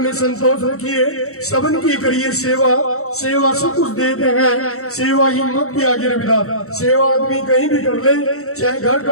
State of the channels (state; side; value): late; right; 0.64 ms